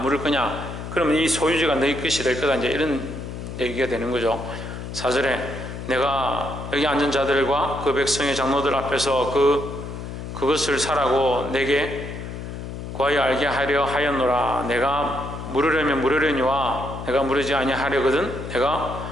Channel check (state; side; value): noise; left; hum, 8 dB below the sound